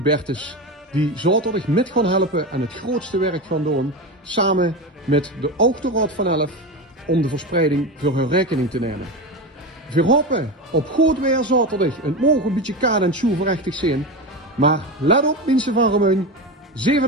die zaterdag met gaan helpen en het grootste werk gaan doen, samen met de Autoraad van Elf, om de verspreiding voor hun rekening te nemen. We hopen op goed weer zaterdag. Het mogen een beetje kaad en schoenverrechtig zijn. Maar let op mensen van Remeun.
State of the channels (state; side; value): normal; both; correlation 0.21